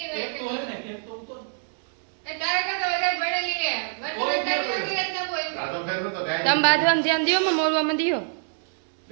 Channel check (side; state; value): left; silent; 58 dB below the other